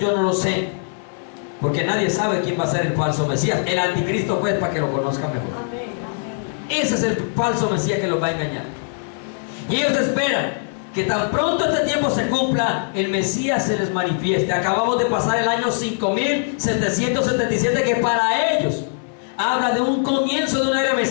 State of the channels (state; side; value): silent; right; 65 dB below the other